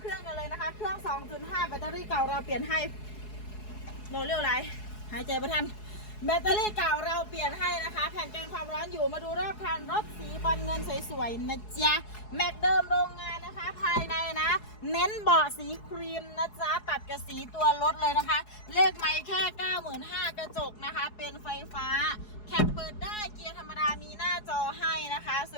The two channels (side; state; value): right; late; 4.7 ms